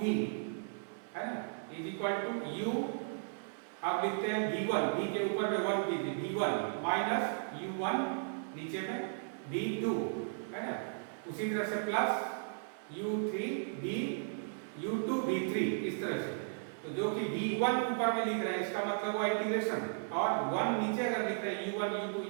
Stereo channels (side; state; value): left; silent; 54 dB below the other